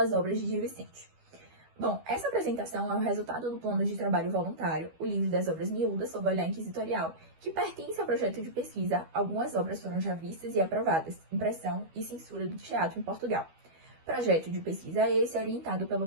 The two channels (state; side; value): late; left; 12 ms